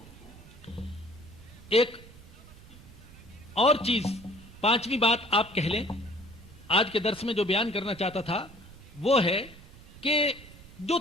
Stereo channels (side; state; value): right; noise; rumble, 20 dB below the sound